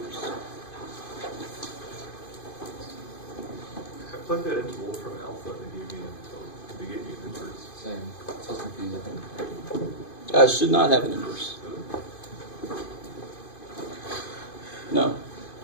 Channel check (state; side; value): late; right; 2.5 ms